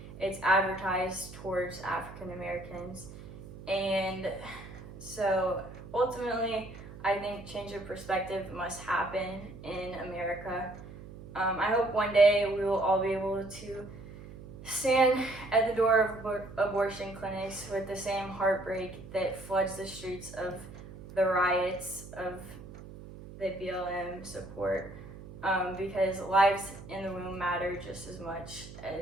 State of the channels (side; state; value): right; noise; hum, 15 dB below the sound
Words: it's advertised towards African Americans. And so ultimately, I think change of perspective must happen in America. I hope one day we will all be able to stand at the door of abortion clinics with the same heartbreak that floods the streets of the riots of the BLM support, because lives in the womb matter. matter just as much